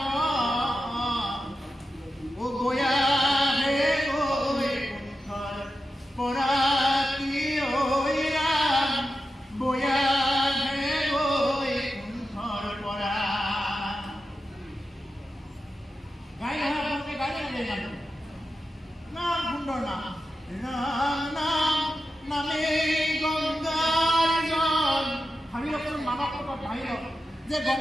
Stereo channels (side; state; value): both; normal; correlation 0.90